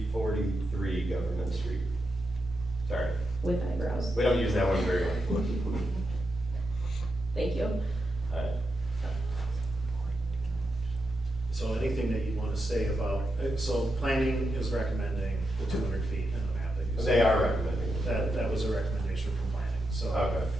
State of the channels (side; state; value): both; normal; correlation 0.86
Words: Government Street. Sorry, With eyebrows. we don't use that one very much. Thank you. So anything that you want to say about, so planning is recommending the 200 feet in the map that you said. They are recommending. That was a recommendation from planning, so. Okay.